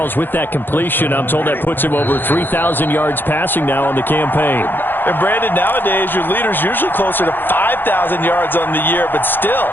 with that completion, I'm told that puts him over 3,000 yards passing now on the campaign. And Brandon, nowadays your leader's usually closer to 5,000 yards on the year, but still,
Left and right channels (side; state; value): right; late; 0.097 ms